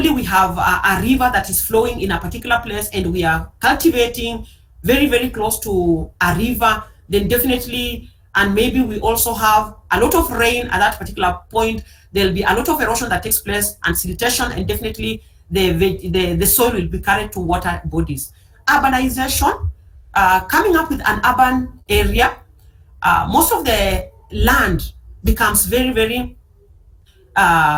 we have a river that is flowing in a particular place and we are cultivating very, very close to a river, then definitely, and maybe we also have a lot of rain at that particular point, there'll be a lot of erosion that takes place and siltation, and definitely the soil will be carried to water bodies. Urbanization, coming up with an urban area, most of the land becomes very, very,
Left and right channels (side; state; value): both; identical; correlation 1.00